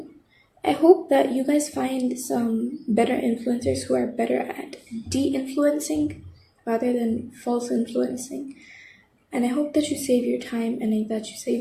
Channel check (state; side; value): identical; both; correlation 1.00